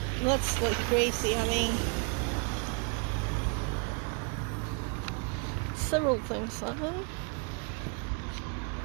That's like crazy having several things on.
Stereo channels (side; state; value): left; quieter; 37.1 dB